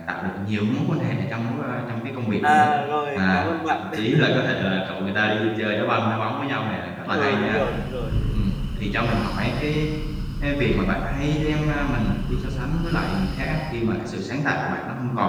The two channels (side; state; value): both; identical; correlation 1.00